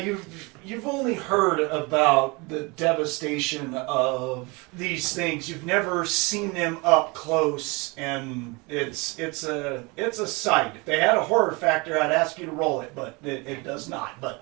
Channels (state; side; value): quieter; left; 27.0 dB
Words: only heard about the devastation of these things. You've never seen them up close, and it's a sight. If they had a horror factor, I'd ask you to roll it, but it does not. But